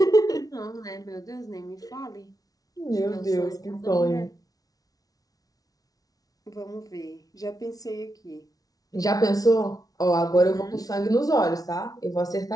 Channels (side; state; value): right; late; 0.18 ms